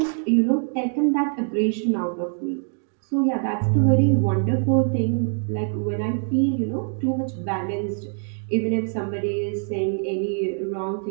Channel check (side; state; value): left; silent; 57 dB below the other